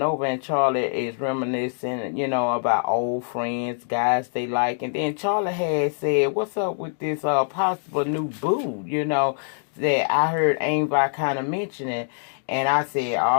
and Charley is reminiscing, about old friends, guys they like. And then Charley had said, what's up with this possible new boo, that I heard Aunt Vi kind of mentioning. And I said,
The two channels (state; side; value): silent; right; digital silence